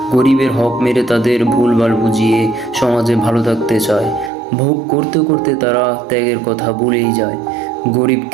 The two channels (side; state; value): left; drops out; at 4.3 s